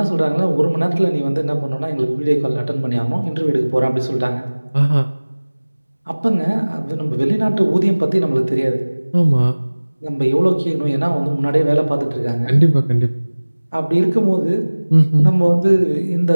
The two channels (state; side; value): inverted; both; correlation -1.00